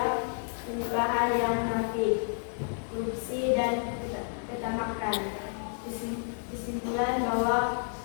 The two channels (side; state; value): right; silent; 58 dB below the other